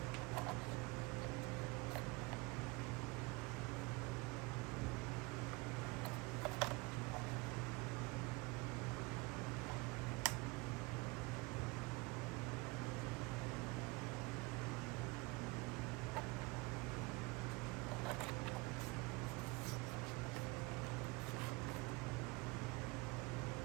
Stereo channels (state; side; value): quieter; left; 24.9 dB